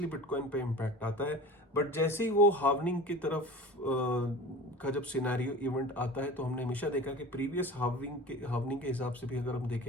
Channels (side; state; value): both; normal; correlation 0.36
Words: बिटकॉइन पे इम्पैक्ट आता है, बट जैसे ही वो हार्वनिंग की तरफ का जब सिनेरियो इवेंट आता है, तो हमने हमेशा देखा कि प्रीवियस हार्वनिंग के हिसाब से भी अगर हम